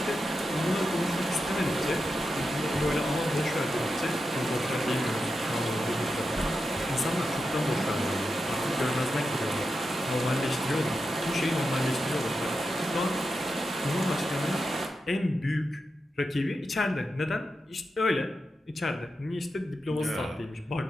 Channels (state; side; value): normal; both; correlation 0.88